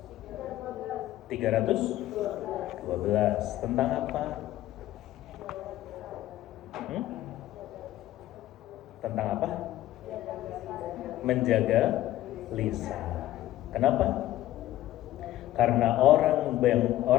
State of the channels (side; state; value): right; quieter; 14.4 dB